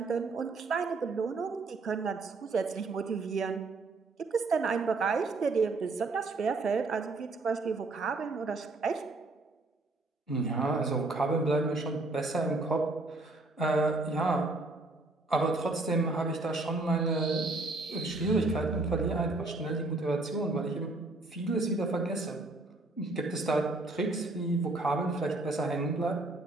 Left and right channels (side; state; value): left; quieter; 3.2 dB